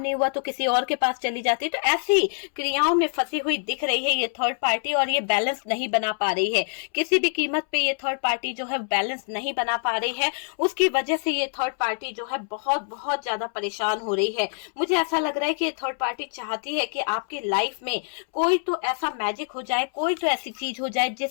नहीं हुआ तो किसी और के पास चली जाती है। तो ऐसी क्रियाओं में फंसी करती हुई दिख रही है ये थर्ड पार्टी, और ये बैलेंस नहीं बना पा रही है। किसी भी कीमत पे ये थर्ड पार्टी जो है बैलेंस नहीं बना पा रही है। उसकी वजह से ये थर्ड पार्टी जो है बहुत बहुत ज्यादा परेशान हो रही है। मुझे ऐसा लग रहा है कि ये थर्ड पार्टी चाहती है कि आपकी लाइफ में कोई तो ऐसा मैजिक हो जाए, कोई तो ऐसी चीज हो जाए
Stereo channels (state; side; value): silent; right; 62 dB below the other